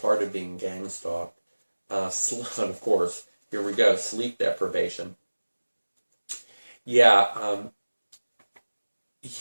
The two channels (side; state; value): both; inverted; correlation -1.00